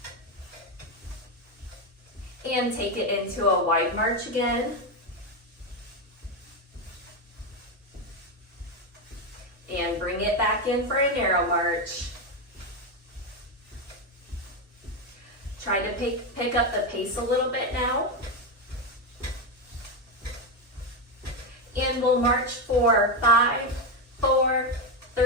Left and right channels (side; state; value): both; normal; correlation 0.09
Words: And take it into a wide march again. And bring it back in for a narrow march. Try to pick up the pace a little bit now. And we'll march for 5, 4,